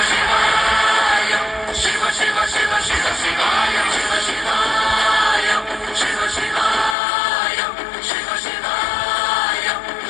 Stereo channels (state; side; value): drops out; right; at 7.0 s